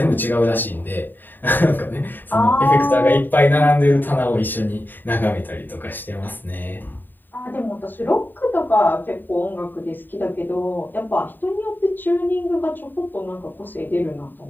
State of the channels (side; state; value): right; late; 0.091 ms